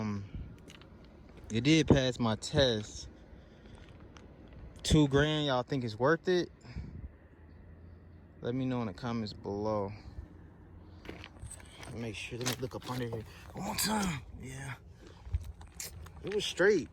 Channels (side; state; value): both; identical; correlation 1.00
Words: It did pass my test. $2,000, y'all think it's worth it? Let me know in the comments below. Make sure, let me look up under here one more time. Yeah. It was straight.